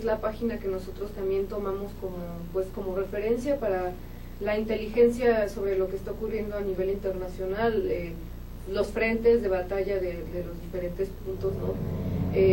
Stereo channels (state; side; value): identical; both; correlation 1.00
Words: la página que nosotros también tomamos como referencia para la inteligencia sobre lo que está ocurriendo a nivel internacional, los frentes de batalla de los diferentes puntos, ¿no?